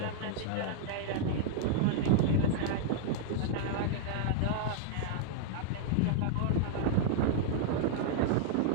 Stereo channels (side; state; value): both; different; correlation -0.01